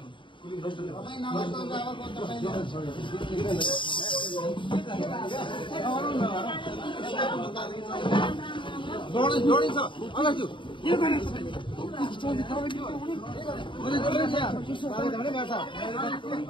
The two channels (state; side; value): late; right; 0.24 ms